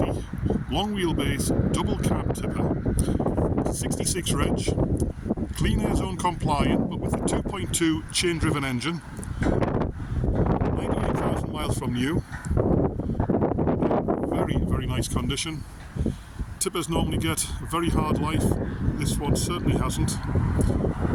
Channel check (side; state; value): both; identical; correlation 1.00